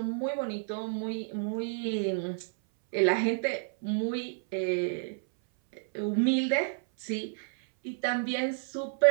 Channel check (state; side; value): silent; left; 58 dB below the other